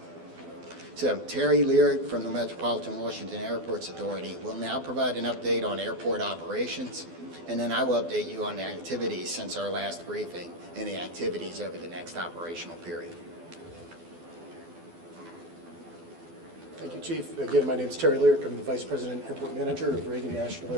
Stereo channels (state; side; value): late; left; 12 ms